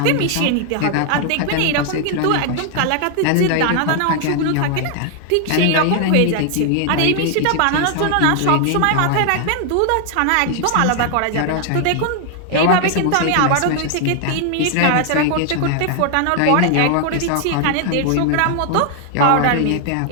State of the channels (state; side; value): different; both; correlation 0.00